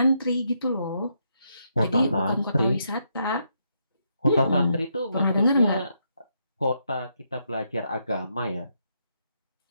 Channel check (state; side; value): inverted; both; correlation -0.78